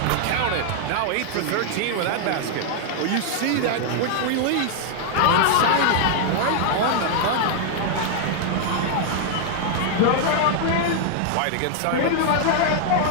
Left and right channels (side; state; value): both; different; correlation 0.00